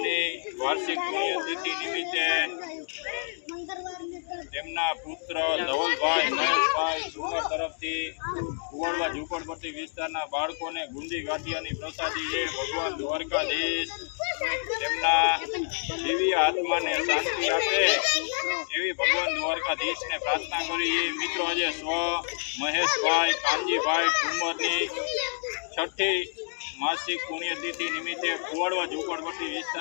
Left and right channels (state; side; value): silent; right; digital silence